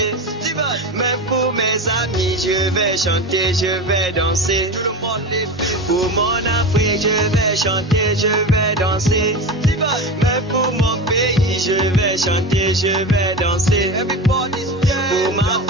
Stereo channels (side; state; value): both; normal; correlation 0.25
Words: Mais pour mes amis, je vais chanter, je vais danser. Pour mon Afrique, je vais chanter, je vais danser. Mais pour mon pays, je vais chanter, je vais danser. Pour ma